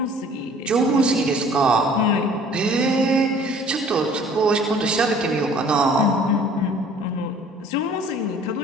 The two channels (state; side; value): normal; both; correlation 0.52